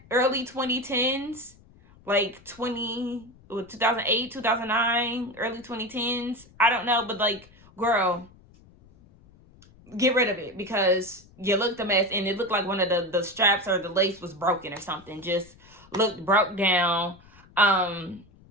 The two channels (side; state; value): left; noise; rumble, 26 dB below the sound